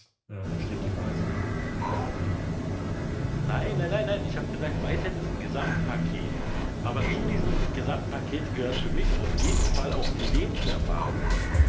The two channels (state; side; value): identical; both; correlation 1.00